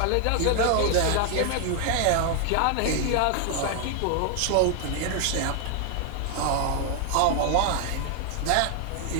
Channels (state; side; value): different; both; correlation 0.00